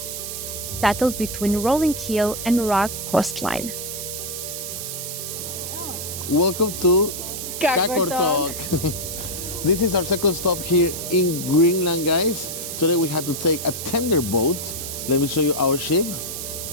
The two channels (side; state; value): right; noise; hiss, 6 dB below the sound